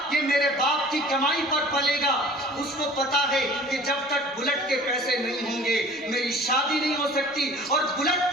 یہ میرے باپ کی کمائی پر پلے گا۔ اس کو پتا ہے کہ جب تک بلٹ کے پیسے نہیں ہوں گے میری شادی نہیں ہو سکتی، اور بلٹ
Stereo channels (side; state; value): both; normal; correlation 0.46